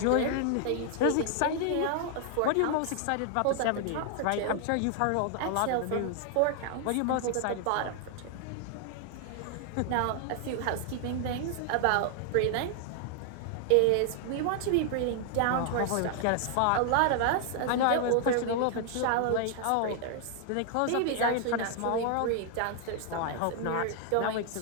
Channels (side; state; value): both; different; correlation 0.00